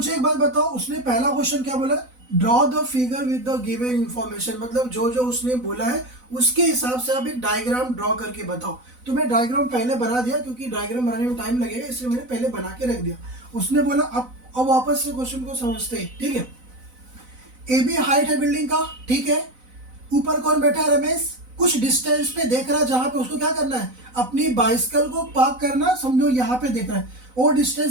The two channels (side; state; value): left; late; 4.0 ms